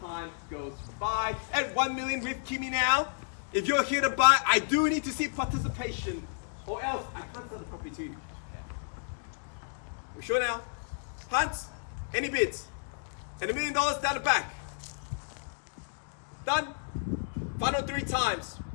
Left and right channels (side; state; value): right; silent; digital silence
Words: goes by. At 1 million with Kimmy now, if you're here to buy, I do need to see participation, or else I can't sell the property to you. We're sure now? Hans, any bids? And $1 million down the back. Done? Final 3 times.